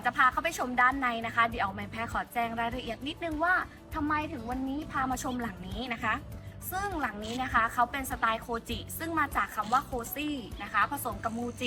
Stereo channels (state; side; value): identical; both; correlation 1.00